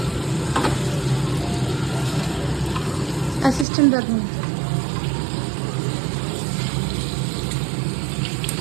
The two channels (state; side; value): drops out; left; at 3.7 s